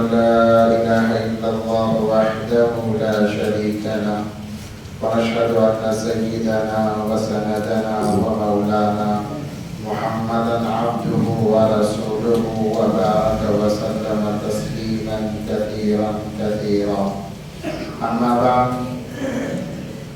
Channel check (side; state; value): both; identical; correlation 1.00